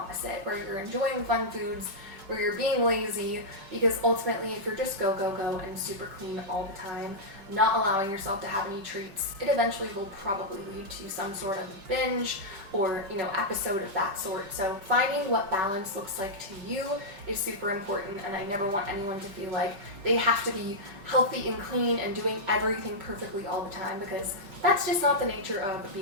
where you're enjoying fun foods, where you're being lazy, because ultimately if you're just go, go, go and super clean all the time, not allowing yourself to have any treats, it eventually will probably lead to some sort of binge or, episode of that sort. So finding what balance looks like to you is super important, and I never want anyone to feel like they have to be healthy and clean and doing everything perfectly all the time, because that's just not the nature of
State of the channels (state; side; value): late; left; 5.2 ms